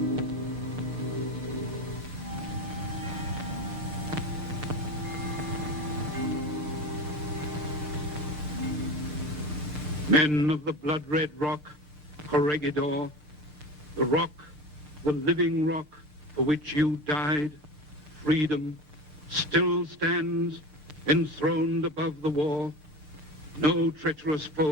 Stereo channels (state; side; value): normal; both; correlation 0.29